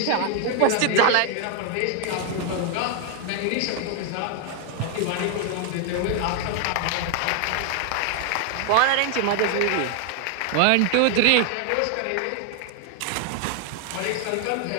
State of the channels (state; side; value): different; both; correlation 0.00